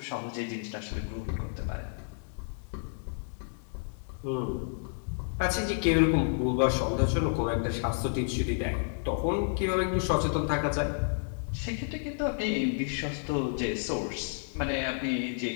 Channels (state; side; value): silent; right; digital silence